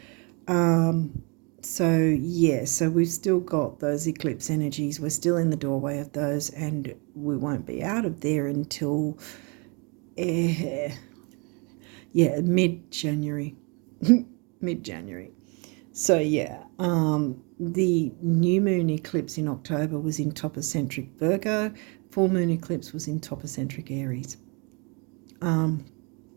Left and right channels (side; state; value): left; quieter; 32.4 dB